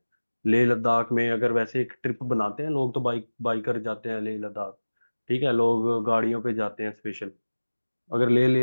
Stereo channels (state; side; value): inverted; both; correlation -1.00